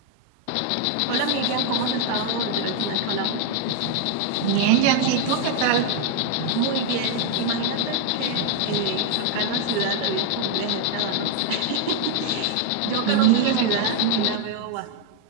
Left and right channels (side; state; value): both; different; correlation 0.00